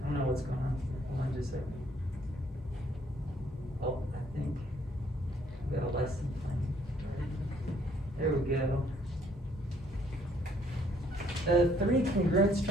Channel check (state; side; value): normal; both; correlation 0.65